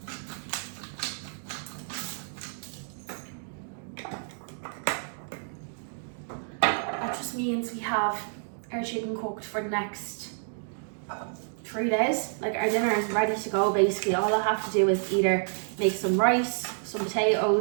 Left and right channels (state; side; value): silent; left; digital silence